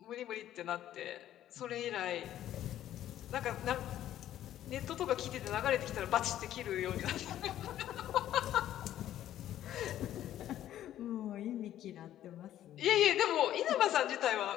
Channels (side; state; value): right; quieter; 12.2 dB